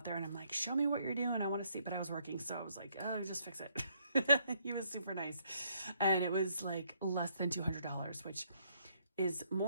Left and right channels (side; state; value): both; inverted; correlation -0.70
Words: there and I'm like, show me what you're doing, I want to see, but I was working, so I was like, oh, just fix it. He was super nice, and it was like less than $200, which is